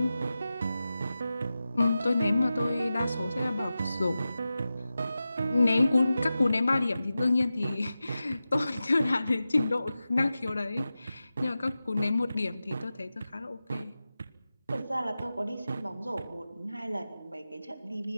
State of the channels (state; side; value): inverted; both; correlation -0.94